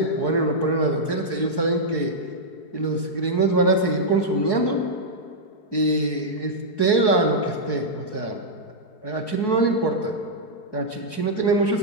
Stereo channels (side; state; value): right; late; 4.7 ms